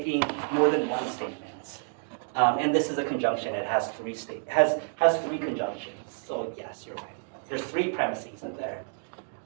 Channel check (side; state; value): left; silent; 59 dB below the other